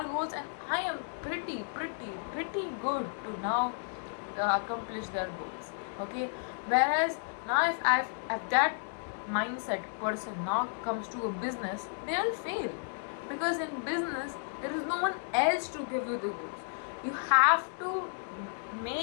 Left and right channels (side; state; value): right; silent; digital silence